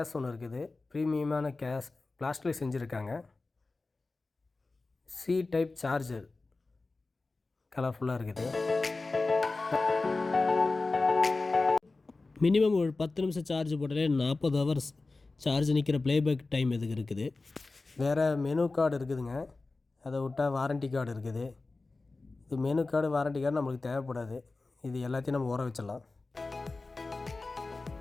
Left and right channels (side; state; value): right; quieter; 3.5 dB